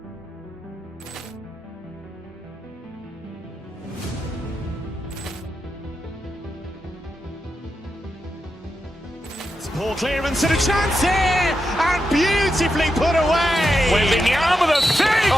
Ball clearance and a chance here, and beautifully put away. Wembanyama with a fake,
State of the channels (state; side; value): normal; both; correlation 0.87